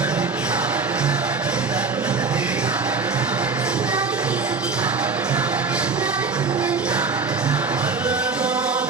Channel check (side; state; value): left; quieter; 4.5 dB